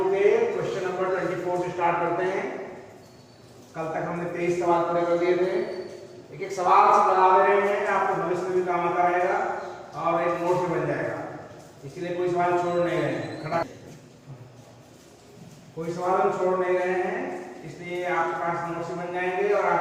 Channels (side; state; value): both; identical; correlation 1.00